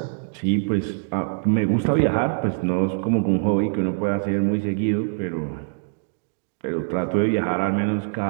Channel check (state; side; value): silent; left; digital silence